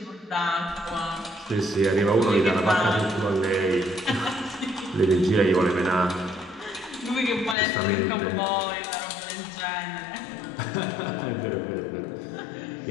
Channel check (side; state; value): right; drops out; at 7.6 s